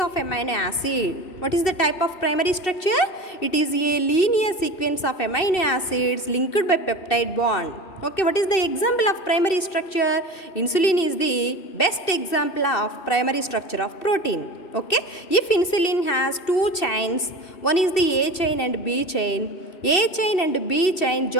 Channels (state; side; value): late; right; 2.7 ms